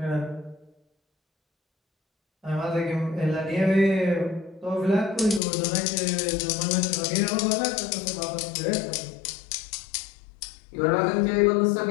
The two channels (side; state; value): right; drops out; at 5.4 s